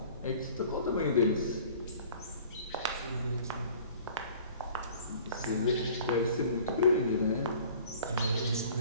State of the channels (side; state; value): both; inverted; correlation -0.49